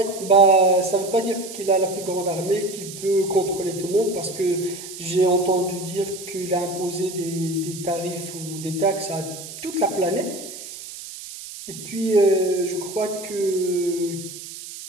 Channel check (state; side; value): noise; right; hiss, 12 dB below the sound